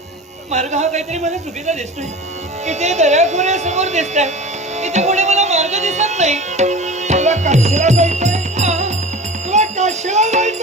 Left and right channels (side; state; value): both; normal; correlation 0.35